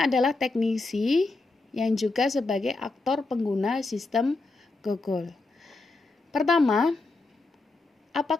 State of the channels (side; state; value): right; quieter; 3.4 dB